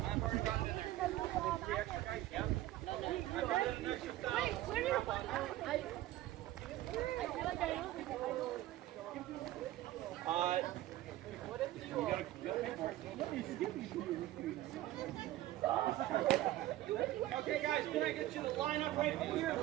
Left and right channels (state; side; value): quieter; left; 15.3 dB